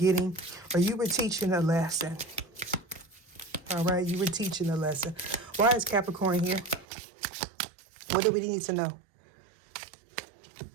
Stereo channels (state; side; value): drops out; left; at 6.9 s